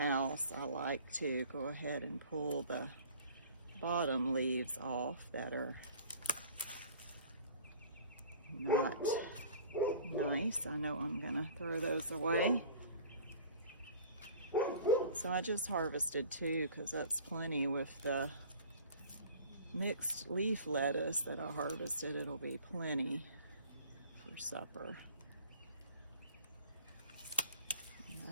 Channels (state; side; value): inverted; both; correlation -0.46